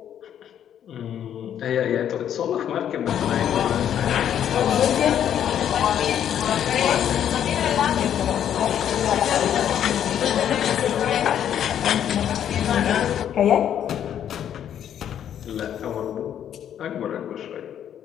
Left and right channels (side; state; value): right; quieter; 9.8 dB